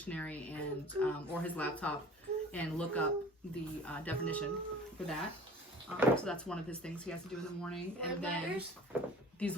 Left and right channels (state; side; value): normal; both; correlation 0.44